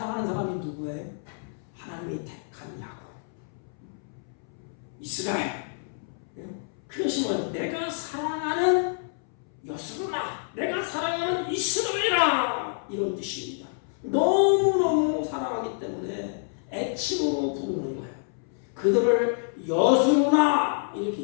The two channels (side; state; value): right; silent; 60 dB below the other